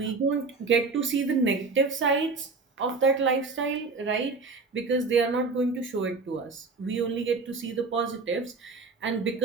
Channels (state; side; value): quieter; left; 4.1 dB